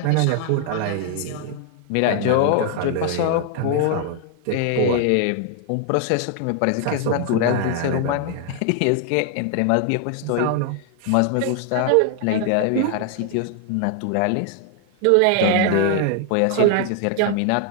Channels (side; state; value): both; different; correlation 0.00